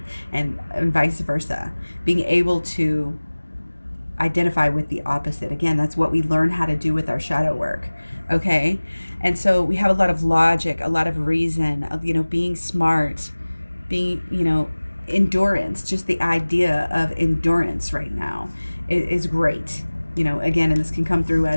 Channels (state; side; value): inverted; both; correlation -1.00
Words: and vice versa. Being able to identify with the opposite. Again, that's what we learn how to do with our shadow work. Okay. And so we have a lot of logic, a lot of reason, you know, being smart, being, you know, endurance. Just the idea of endurance right now is great. You know, again, and this can come through